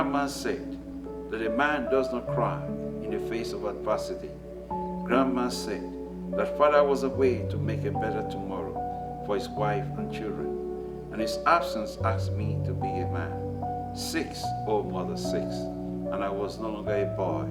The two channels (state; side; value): identical; both; correlation 1.00